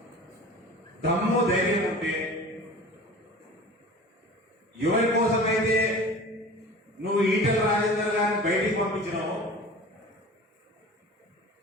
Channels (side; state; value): both; normal; correlation 0.39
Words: దమ్ము ధైర్యం ఉంటే, ఎవరి కోసమైతే నువ్వు ఈటెల రాజేందర్ గారిని బయటికి పంపించినావు